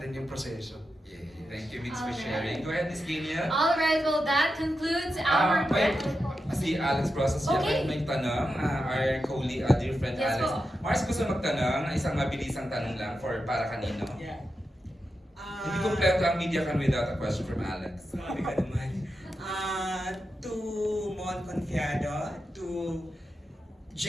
yung proseso. Yeah. Thank you, Mix, for sharing. Go ahead, Miss Kenia. Alright, well that concludes our... Wait. Si Alex Process Okay. may tanong. Our colleague, dear friend Yes Alex. po. Mars, gusto magtanong. Isang mabilisang tanong lang para kanino. Yeah. Hindi kompleto ang media can without a question from Alex. Sabi ka naman. To Mon Confiado, to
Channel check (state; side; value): normal; both; correlation 0.89